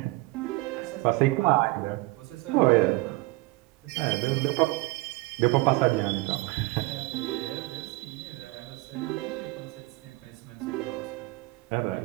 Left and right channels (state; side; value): quieter; left; 21.7 dB